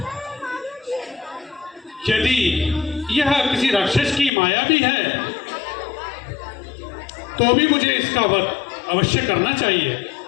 यदि यह किसी राक्षस की माया भी है तो भी मुझे इसका वध अवश्य करना चाहिए।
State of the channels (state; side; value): drops out; right; at 4.3 s